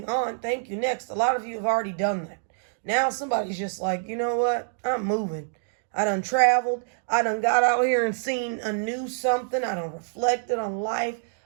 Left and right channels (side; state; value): left; silent; digital silence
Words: on. Thank you. Next. A lot of you have already done that. Now somebody's just like, you know what? I'm moving. I done traveled. I done got out here and seen a new something. I done reflected on life.